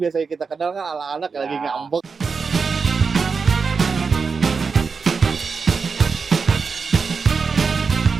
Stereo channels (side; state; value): left; quieter; 5.2 dB